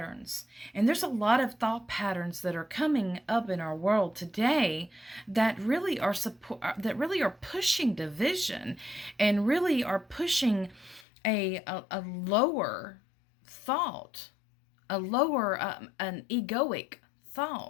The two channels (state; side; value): drops out; right; at 11.1 s